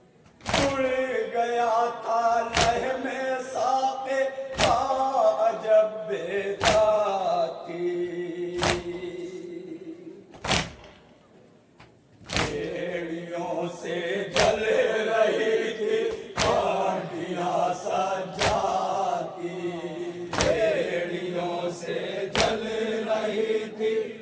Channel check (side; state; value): both; identical; correlation 1.00